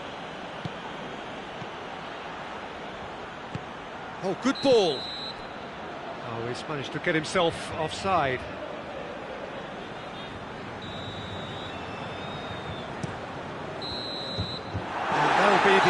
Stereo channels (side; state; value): both; identical; correlation 1.00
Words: Oh, good ball. Oh, he's managed to get himself offside. And that'll be